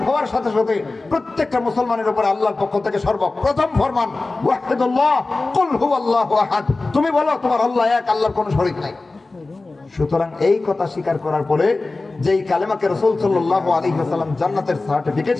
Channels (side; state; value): right; quieter; 3.4 dB